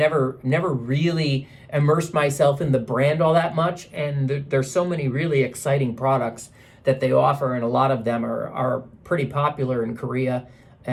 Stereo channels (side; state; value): both; identical; correlation 1.00